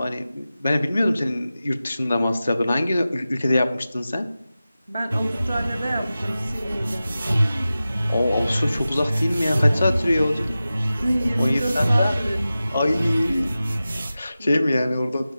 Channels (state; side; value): inverted; both; correlation -0.95